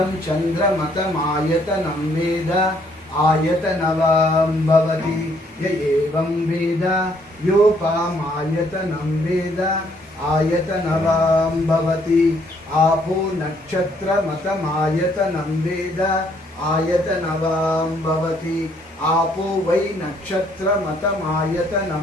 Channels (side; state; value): both; normal; correlation 0.67